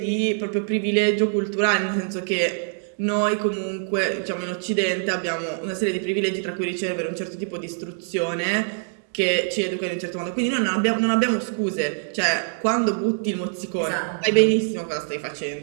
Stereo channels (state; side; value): silent; left; 63 dB below the other